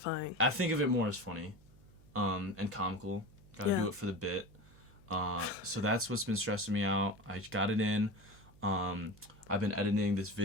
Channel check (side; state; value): right; noise; hum, 24 dB below the sound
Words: I think of it more as funny, and comical. Gotta do it for the bit. So that's what's been stressing me out. I got it in. I've been editing this